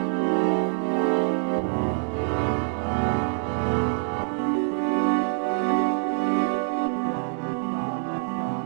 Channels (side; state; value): left; silent; 57 dB below the other